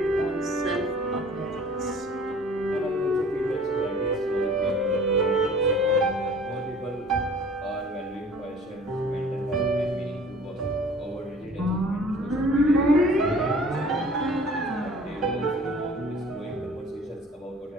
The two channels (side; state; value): both; normal; correlation 0.49